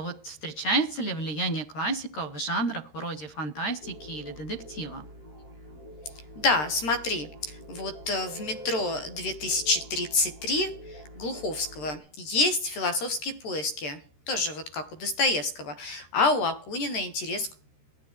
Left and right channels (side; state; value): right; late; 13 ms